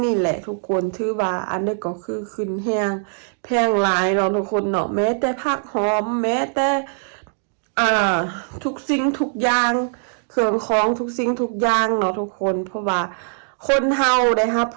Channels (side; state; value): left; silent; digital silence